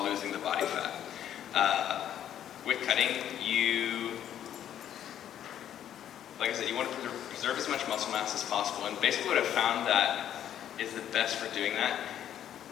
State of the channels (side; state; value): right; quieter; 10.5 dB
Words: losing the body fat. With cutting, like I said, you want to preserve as much muscle mass as possible. And basically what I've found that is the best for doing that